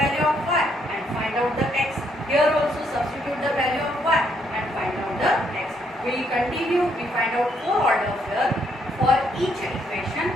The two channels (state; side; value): normal; both; correlation 0.72